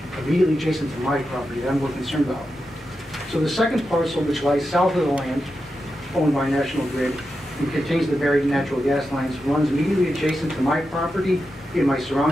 immediately adjacent to my property that I'm more concerned about. So the second parcel, which lies south of the land owned by National Grid and contains the buried natural gas lines, runs immediately adjacent to my property and my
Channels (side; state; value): both; normal; correlation 0.89